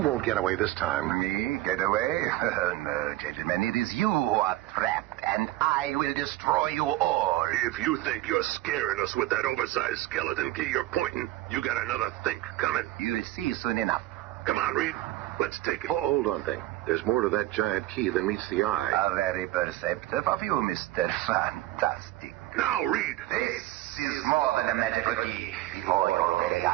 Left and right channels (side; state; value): left; quieter; 16.5 dB